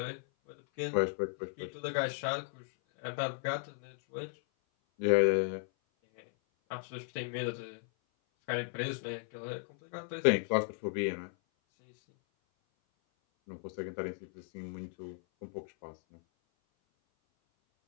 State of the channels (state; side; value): silent; right; 54 dB below the other